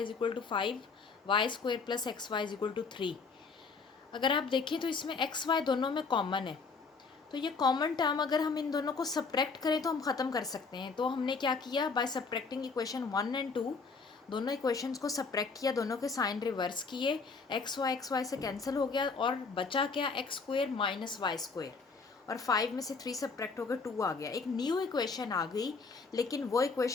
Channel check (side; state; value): right; quieter; 4.6 dB